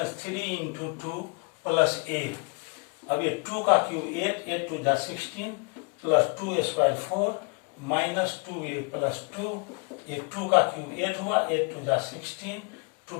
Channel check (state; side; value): quieter; right; 36.5 dB